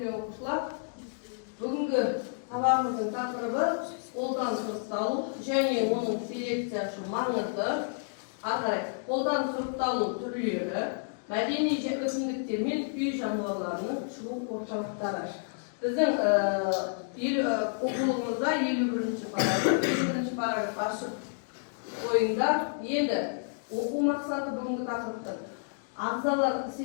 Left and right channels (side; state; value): right; silent; digital silence